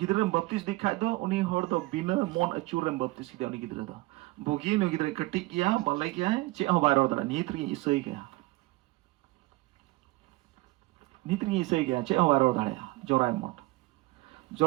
baptis dikhai do uni hor do bina mon acurem baptis ki uni gidre do bogi no gidre katik ya balai kya che ho bairo da nitri isai kya che ho bairo da ya jorai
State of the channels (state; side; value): quieter; left; 20.9 dB